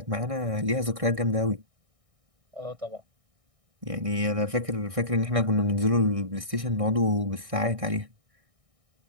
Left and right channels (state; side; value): late; left; 1.6 ms